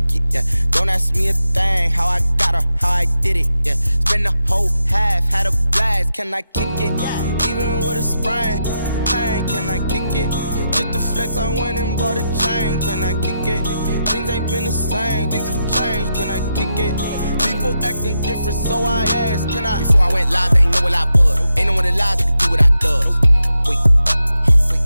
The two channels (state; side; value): inverted; both; correlation -0.86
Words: it? Yeah, don't ask me a thing, how I got her, how I did it, yeah. Spend the whole half, had a blast, can I kick it? Even with a sprain, pain, can I kick it? Just the flex, I went and bought a chain, can I kick it? Things ain't been the same, things have changed, can I kick it? People acting different, so I asked, can I? Before I went live, they ain't know what I was. Ain't no one alive that could do what I does. Wait.